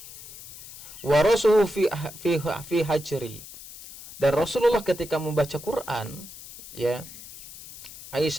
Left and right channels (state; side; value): noise; left; hiss, 15 dB below the sound